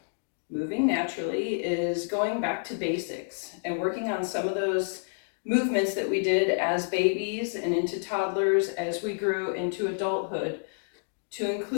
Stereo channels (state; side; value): silent; right; digital silence